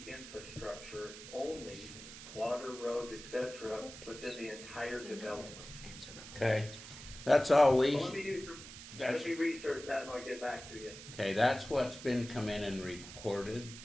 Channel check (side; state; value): right; noise; hiss, 13 dB below the sound